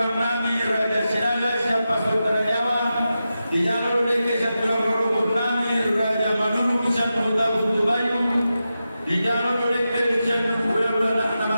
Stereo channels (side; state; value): both; inverted; correlation -0.91